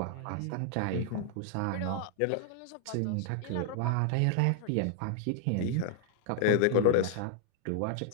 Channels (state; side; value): different; both; correlation 0.00